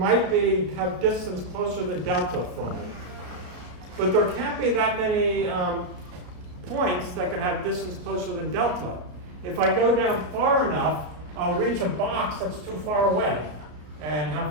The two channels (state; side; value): late; left; 33 ms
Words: have distance closer than delta from me. but there can't be that many points that can have distance closer than delta. If I go down far enough, I'll reach a box that's too far away. And how